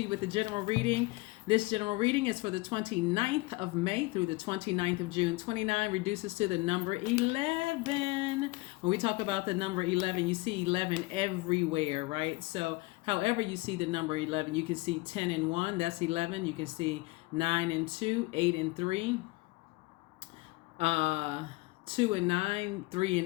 with the general reading. This general reading is for the 29th of May through the 29th of June. 29 reduces to the number 11. When we talk about the number 11, you see 11 everywhere, right? So however you see the number 11, you can see 10 and 1, that's 11. You can see 9 and 2, 8 and 3, 2 and 9, 3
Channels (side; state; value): right; quieter; 22.8 dB